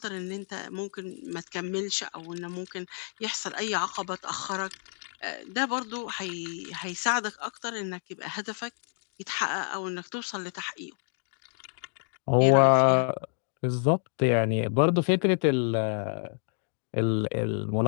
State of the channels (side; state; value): right; silent; 56 dB below the other